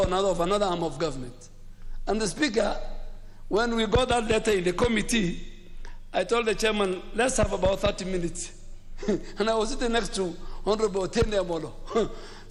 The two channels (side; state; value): both; identical; correlation 1.00